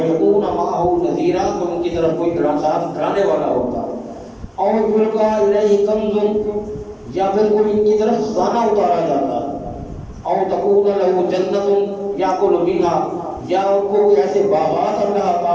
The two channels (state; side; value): identical; both; correlation 1.00